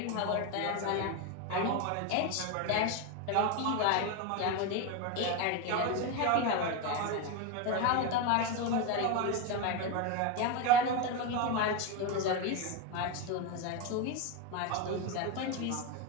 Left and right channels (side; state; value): both; different; correlation 0.03